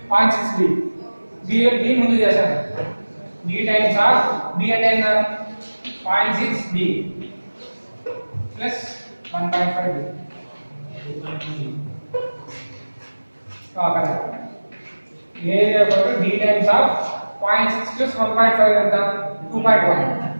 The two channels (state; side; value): inverted; both; correlation -1.00